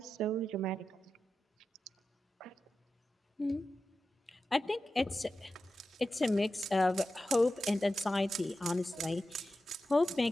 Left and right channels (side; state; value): both; normal; correlation 0.92